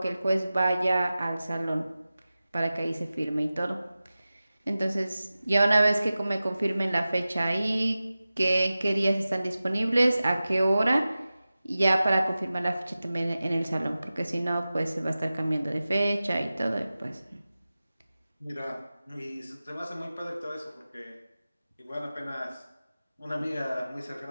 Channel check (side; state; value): both; inverted; correlation -0.96